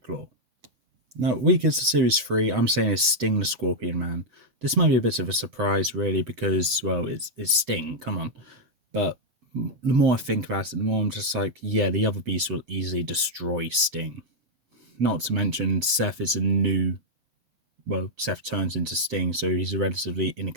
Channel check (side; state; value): left; late; 7.9 ms